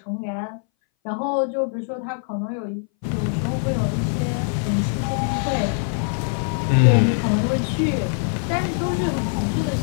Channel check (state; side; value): silent; right; 60 dB below the other